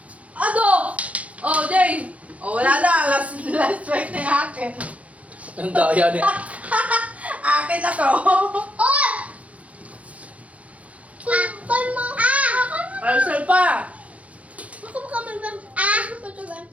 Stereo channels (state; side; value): late; left; 0.066 ms